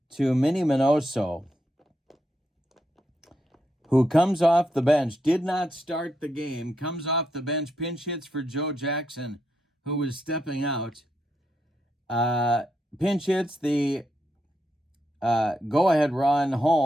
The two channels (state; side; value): normal; both; correlation 0.81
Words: to Minnie Minoso, who comes off the bench, did not start the game, comes off the bench, pinch hits for Joe Jackson, who was stepping out. Pinch hits the go-ahead run